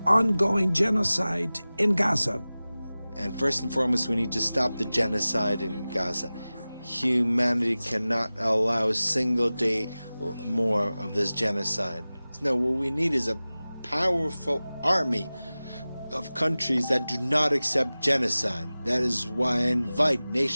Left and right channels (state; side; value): inverted; both; correlation -0.97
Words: ongoing genocide in Gaza. And first and foremost, we need to stop the genocide in Gaza. Humanity cannot allow a single day more of this genocide. No, what we need is a powerful army of countries that do not accept genocide. That is why I invite